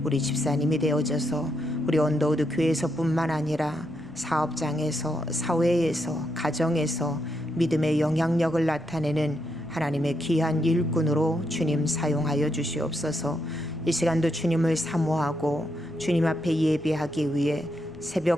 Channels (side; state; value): left; noise; rumble, 25 dB below the sound